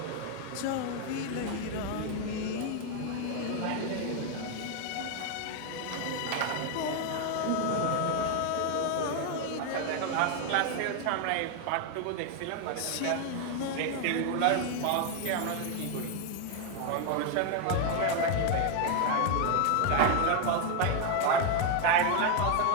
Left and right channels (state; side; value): different; both; correlation 0.01